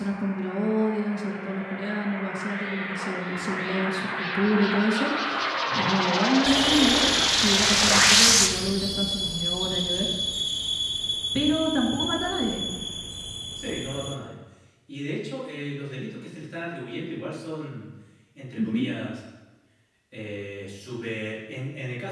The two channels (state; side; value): identical; both; correlation 1.00